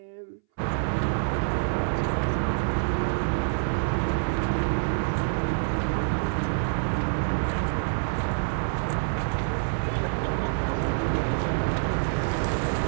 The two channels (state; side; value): silent; left; 60 dB below the other